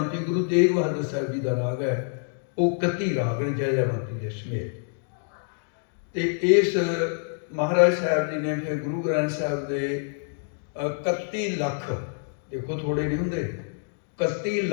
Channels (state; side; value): silent; right; 60 dB below the other